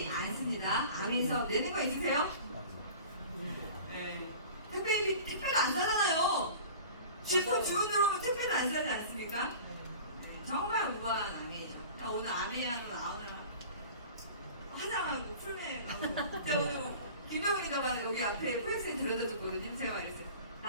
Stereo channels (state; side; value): inverted; both; correlation -0.40